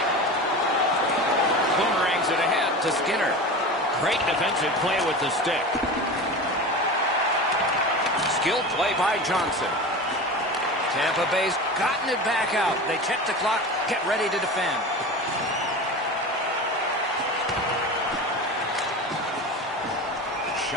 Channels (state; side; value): normal; both; correlation 0.30